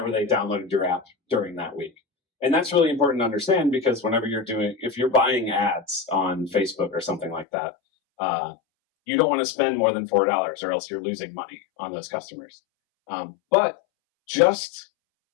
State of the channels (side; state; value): right; drops out; at 7.5 s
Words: they downloaded your app during that week. And that's really important to understand because whenever if you're buying ads on Facebook or something like that, you don't want to spend more than $4 or else you're losing money on those customers. But just